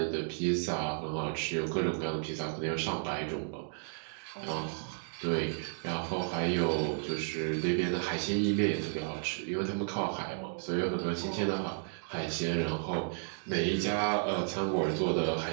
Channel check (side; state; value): left; silent; digital silence